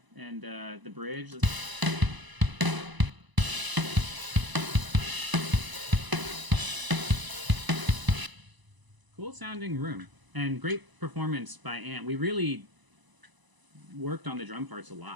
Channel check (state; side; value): late; left; 1.0 ms